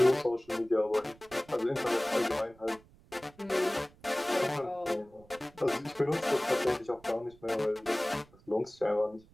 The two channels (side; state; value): right; noise; rumble, 26 dB below the sound